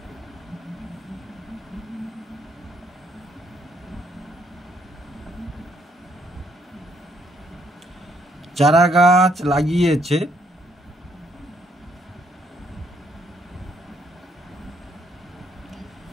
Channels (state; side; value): normal; both; correlation 0.70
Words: চারা গাছ লাগিয়েছে